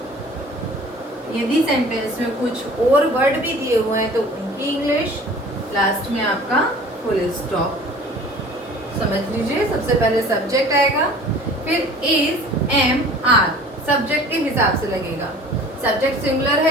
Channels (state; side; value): normal; both; correlation 0.46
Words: यदि सेंटेंस में कुछ और वर्ड भी दिए हुए हैं तो उनकी इंग्लिश, लास्ट में आपका फुल स्टॉप। समझ लीजिए, सबसे पहले सब्जेक्ट आएगा, फिर इज, एम, आर सब्जेक्ट के हिसाब से लगेगा। सब्जेक्ट सिंगुलर